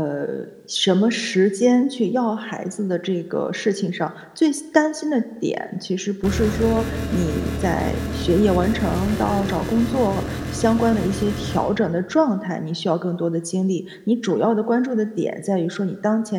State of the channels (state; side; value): identical; both; correlation 1.00